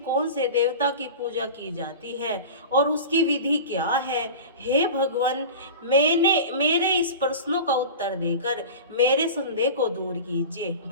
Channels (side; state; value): both; inverted; correlation -0.33